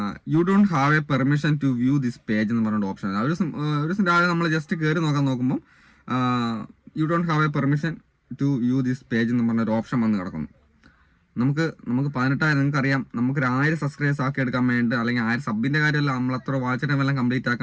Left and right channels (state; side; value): identical; both; correlation 1.00